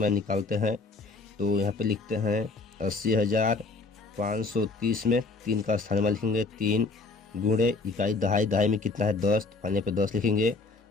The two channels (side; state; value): right; quieter; 3.9 dB